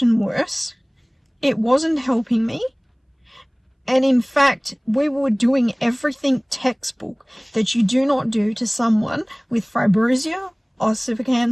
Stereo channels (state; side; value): identical; both; correlation 1.00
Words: worse. It wasn't helping me. And in fact, we were doing everything textbook that you do not do to someone with fibrosia,